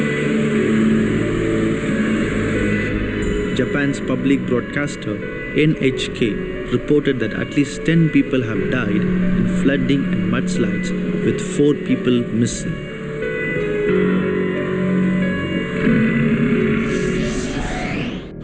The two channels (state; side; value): identical; both; correlation 1.00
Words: Japan's public broadcaster NHK reported that at least 10 people have died in flooding and mudslides, with 4 people missing.